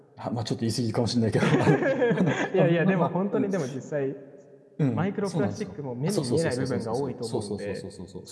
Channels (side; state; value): both; identical; correlation 1.00